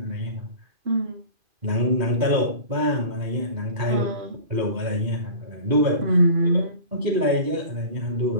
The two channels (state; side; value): late; left; 2.5 ms